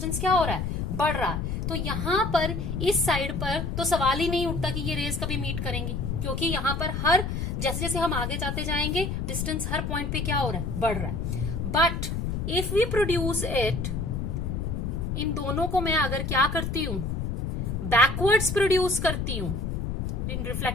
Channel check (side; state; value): left; noise; rumble, 2 dB below the sound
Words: क्या हो रहा है? बढ़ रहा है. तो यहां पर इस साइड पर तो सवाल ही नहीं उठता कि ये रेज कभी मीट करेंगी, क्योंकि यहां पर हर जैसे जैसे हम आगे जाते जाएंगे डिस्टेंस हर पॉइंट पे क्या हो रहा है? बढ़ रहा है. But if we produce it, इन दोनों को मैं अगर क्या करती हूं? बैकवर्ड्स प्रोड्यूस करती हूं इन